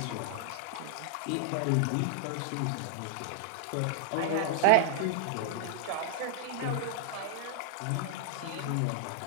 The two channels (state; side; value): different; both; correlation 0.00